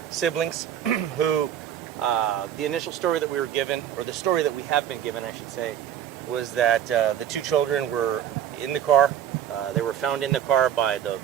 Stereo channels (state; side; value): quieter; left; 10.2 dB